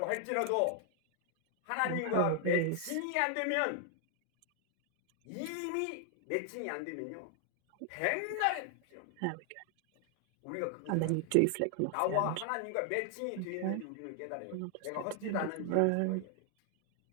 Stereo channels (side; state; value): both; different; correlation 0.00